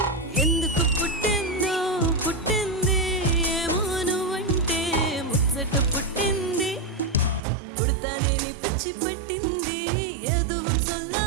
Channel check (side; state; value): left; drops out; at 7.4 s